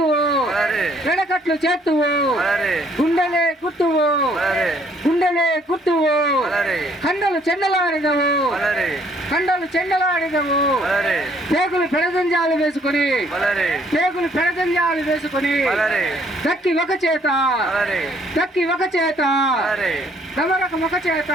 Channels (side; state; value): both; normal; correlation 0.63